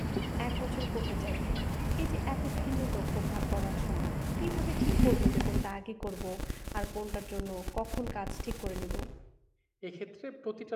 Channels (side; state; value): both; identical; correlation 1.00